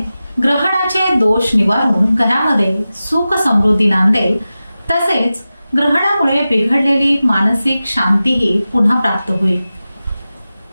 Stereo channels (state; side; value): inverted; both; correlation -0.95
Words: ग्रहणाचे दोष निवारून घरामध्ये सुख समृद्धी नांदेल. तसेच ग्रहणामुळे बिघडलेली मानसिक शांतीही पुन्हा प्राप्त होईल.